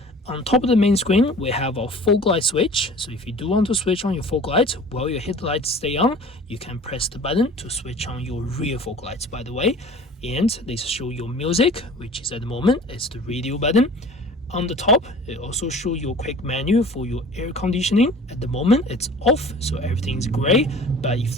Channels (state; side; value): normal; both; correlation 0.44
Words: On top of the main screen, we have our fog light switch. So if you do want to switch on your fog lights while your headlights stay on, you can press the button to switch on your rear fog lights, by the way. And this shows your music, which is at the moment, it's the radio button. On the top, it also shows your quick menu for your air conditioning. At the moment, it's off, so everything's gray. But if